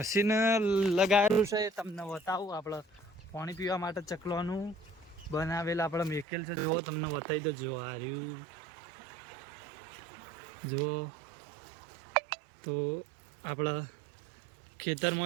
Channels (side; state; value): left; drops out; at 6.2 s